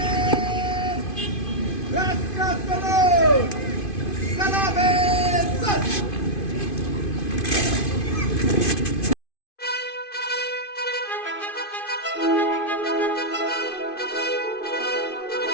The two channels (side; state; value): right; late; 2.5 ms